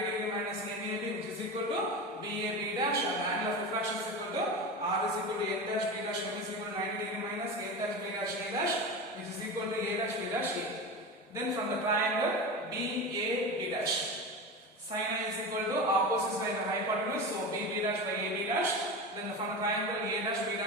degree minus NAB which is equal to BAB dash and the angle of refraction is equal to R is equal to N dash B dash M is equal to 90 degree minus N dash B dash A dash which is equal to A dash B dash A. Then from the triangle BAB dash, sin I is equal to opposite side of the hypotenuse, so BB dash by AB dash. Then from the triangle A dash B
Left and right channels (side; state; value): both; normal; correlation 0.25